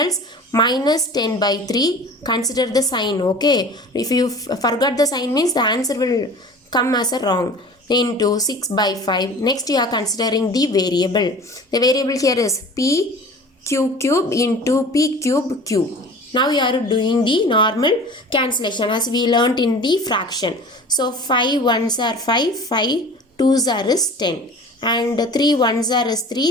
Minus 10 by 3. Consider the sign, okay. If you forgot the sign means the answer will come as a wrong. Into 6 by 5. Next you are considering the variable. The variable here is p q cube into p cube q. Now you are doing the normal cancellation as we learnt in the fraction. So 5 ones are 5, 5 twos are is 10. And 3 ones are is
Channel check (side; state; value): both; normal; correlation 0.41